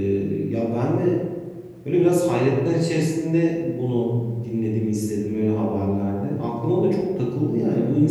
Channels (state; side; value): identical; both; correlation 1.00